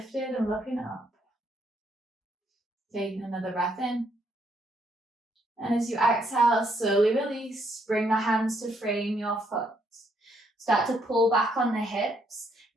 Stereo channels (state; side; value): normal; both; correlation 0.72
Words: and looking up. Taking another breath in. And as you exhale, slowly release, bring the hands to frame your foot. Start to pull back on the hips,